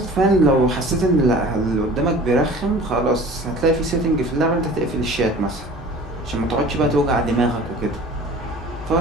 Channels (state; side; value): normal; both; correlation 0.44